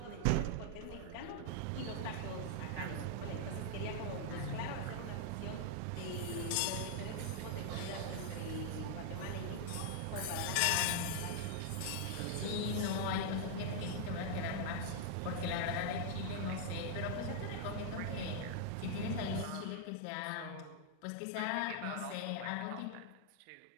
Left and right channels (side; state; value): both; different; correlation -0.01